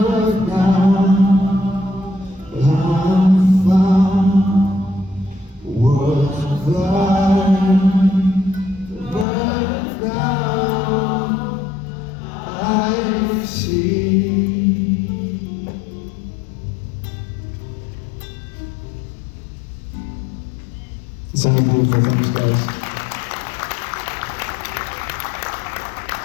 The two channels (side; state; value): right; drops out; at 9.2 s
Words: shall see. It's all beautiful. Thanks, guys.